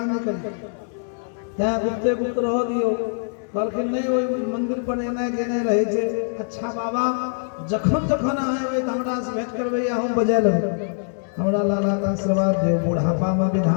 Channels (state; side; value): silent; right; digital silence